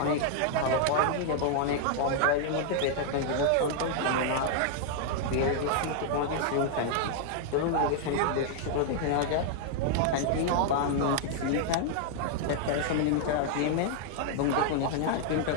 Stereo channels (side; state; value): both; different; correlation 0.00